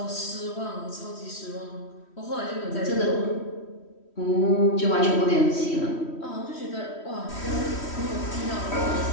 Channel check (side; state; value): right; late; 3.1 ms